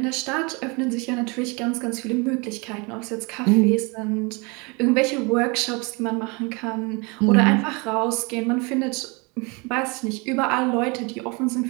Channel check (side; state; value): left; quieter; 29.1 dB